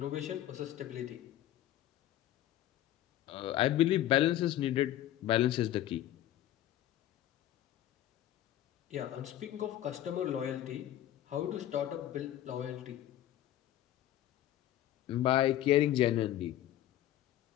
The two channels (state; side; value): quieter; right; 13.0 dB